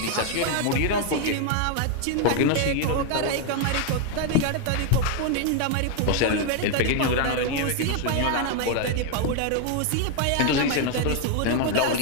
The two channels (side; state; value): both; different; correlation 0.01